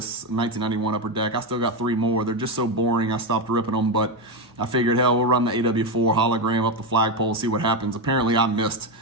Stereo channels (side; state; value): both; normal; correlation 0.10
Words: 1991 Upper Deck. I still got 3 more. They're just so boring, I stopped ripping them, but I figured, hell, we'll run the AW4 hologram up the flagpole, see what happens. Apparently, I missed